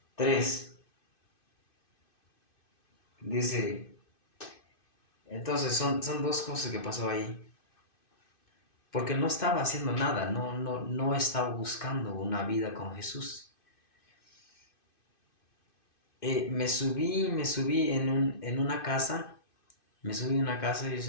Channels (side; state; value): right; late; 2.5 ms